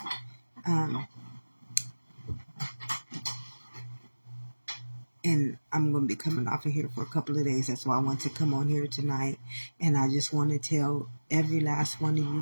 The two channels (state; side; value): inverted; both; correlation -1.00